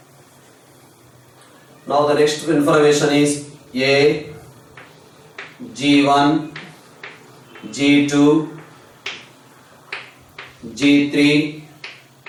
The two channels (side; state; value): both; identical; correlation 1.00